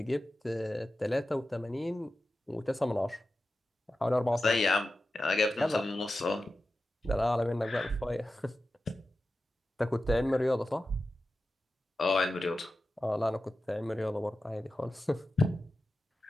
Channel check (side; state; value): both; normal; correlation 0.93